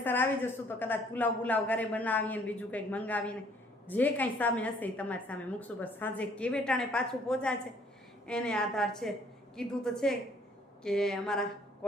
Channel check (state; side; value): normal; both; correlation 0.61